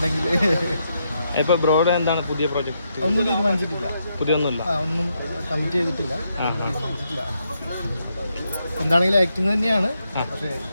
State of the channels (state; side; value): inverted; both; correlation -0.80